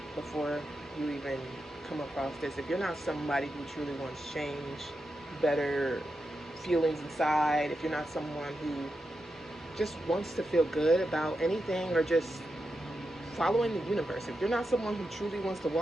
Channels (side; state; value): both; normal; correlation 0.88